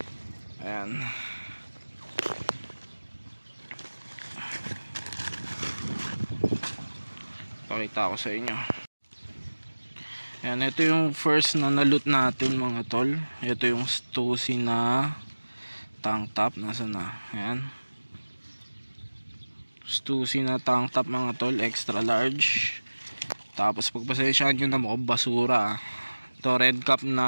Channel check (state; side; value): inverted; both; correlation -1.00